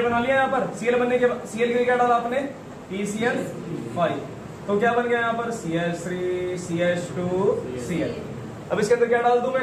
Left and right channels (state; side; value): identical; both; correlation 1.00